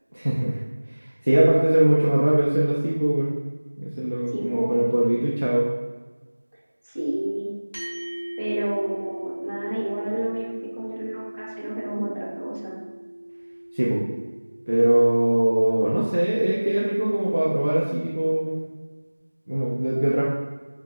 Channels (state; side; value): inverted; both; correlation -1.00